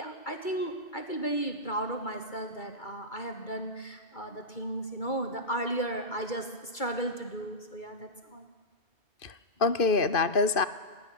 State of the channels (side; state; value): right; late; 2.5 ms